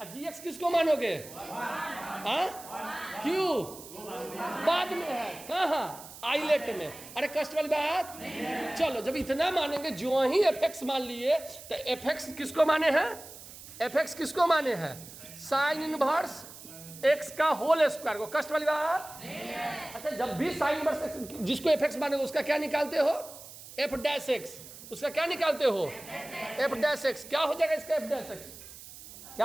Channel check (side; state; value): right; noise; hiss, 16 dB below the sound